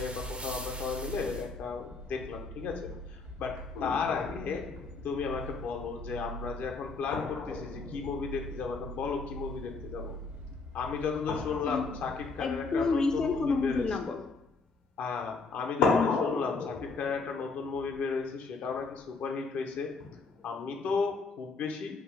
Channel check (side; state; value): right; quieter; 4.2 dB